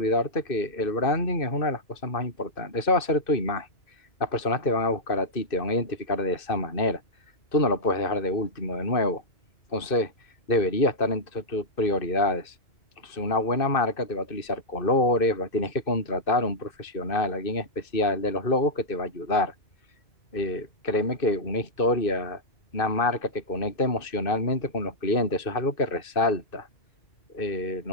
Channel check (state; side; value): late; right; 2.6 ms